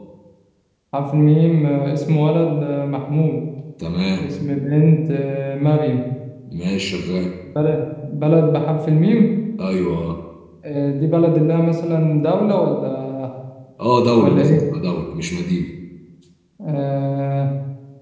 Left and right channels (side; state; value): both; identical; correlation 1.00